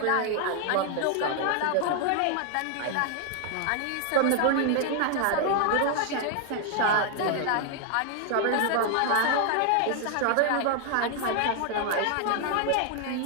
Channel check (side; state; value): both; different; correlation 0.00